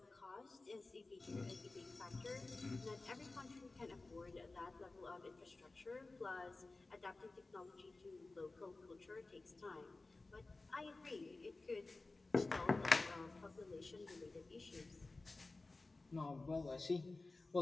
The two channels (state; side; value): quieter; right; 3.3 dB